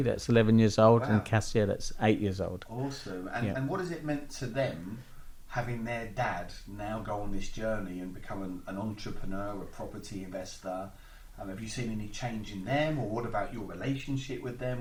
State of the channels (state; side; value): identical; both; correlation 1.00